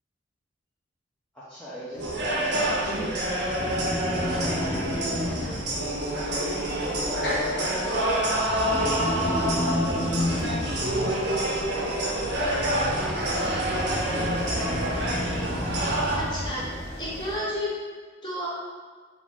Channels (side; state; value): both; normal; correlation 0.22